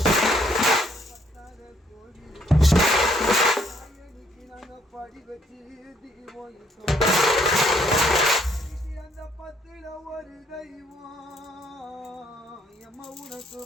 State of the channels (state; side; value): normal; both; correlation 0.67